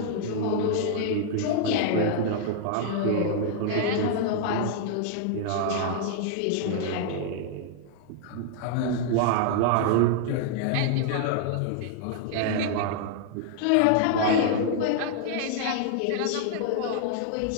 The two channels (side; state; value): both; different; correlation -0.01